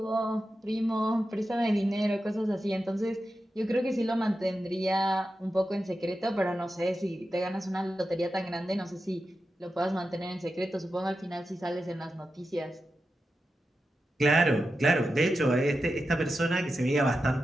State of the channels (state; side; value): normal; both; correlation 0.90